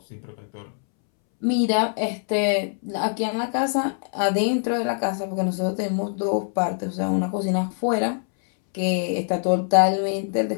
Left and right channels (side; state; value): right; silent; 63 dB below the other